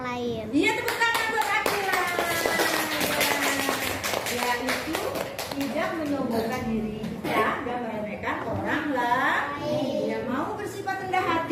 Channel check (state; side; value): identical; both; correlation 1.00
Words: lain. Iya, tepuk tangan buat Akila. Ya, itu tidak menyombongkan diri kita dan meremehkan orang lain. Yang mau bersifat rendah